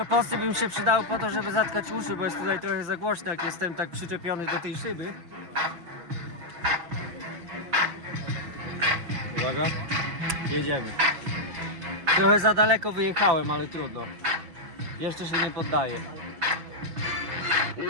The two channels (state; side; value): late; left; 5.9 ms